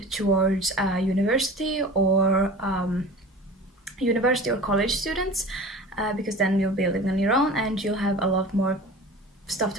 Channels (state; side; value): normal; both; correlation 0.38